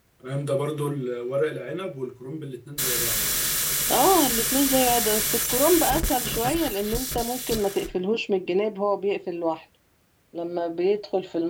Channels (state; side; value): identical; both; correlation 1.00